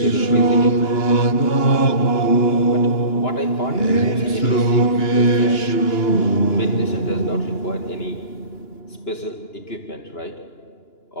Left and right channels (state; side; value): late; right; 2.9 ms